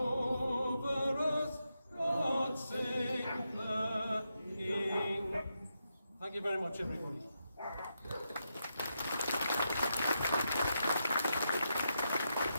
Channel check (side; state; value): both; inverted; correlation -0.85